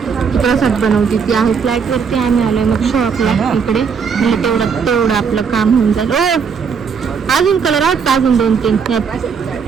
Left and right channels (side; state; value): left; quieter; 6.2 dB